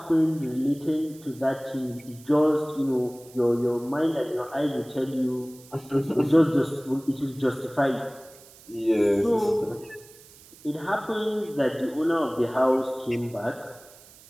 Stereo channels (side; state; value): right; noise; hiss, 23 dB below the sound